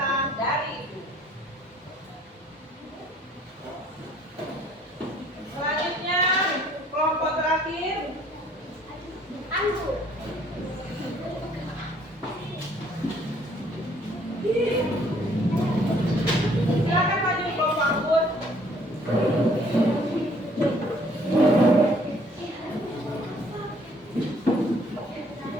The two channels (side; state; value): both; normal; correlation 0.60